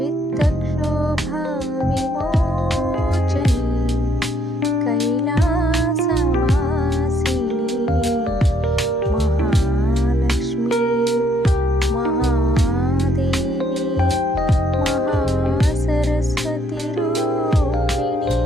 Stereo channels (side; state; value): both; normal; correlation 0.69